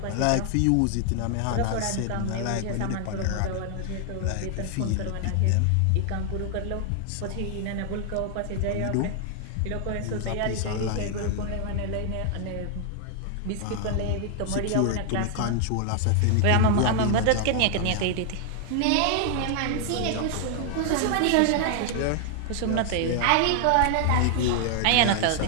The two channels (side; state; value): both; different; correlation 0.00